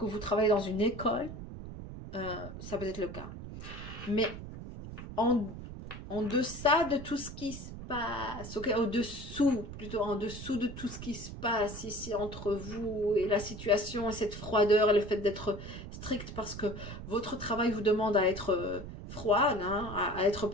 vous travaillez dans une école. Ça peut être le cas. Mais en deçà de tout ce qui se passe, ok, au-dessous, plutôt en dessous de tout ce qui se passe ici entre vous et la situation et cette froideur et le fait d'être strict parce que votre travail vous demande à être froide, hein, à être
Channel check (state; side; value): noise; right; rumble, 11 dB below the sound